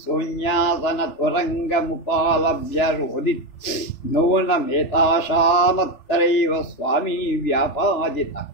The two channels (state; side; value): late; right; 3.4 ms